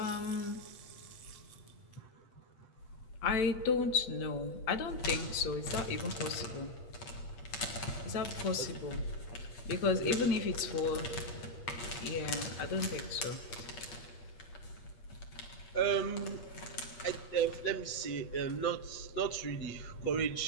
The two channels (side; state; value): right; late; 8.4 ms